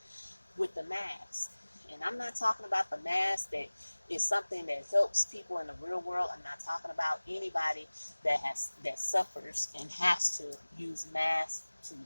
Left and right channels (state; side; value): inverted; both; correlation -1.00